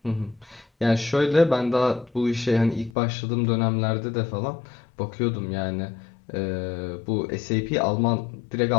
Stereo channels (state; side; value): drops out; right; at 2.9 s